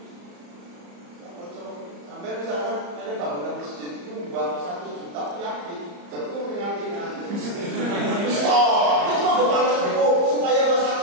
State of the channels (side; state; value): left; late; 34 ms